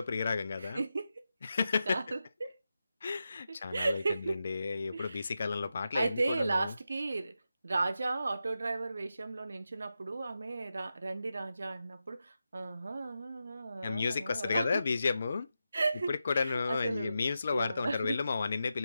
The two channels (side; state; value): both; inverted; correlation -0.89